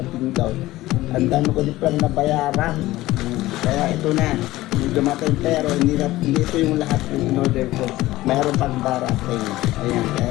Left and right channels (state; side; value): quieter; right; 17.2 dB